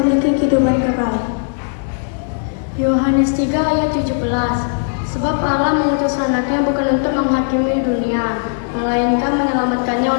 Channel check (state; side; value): silent; right; digital silence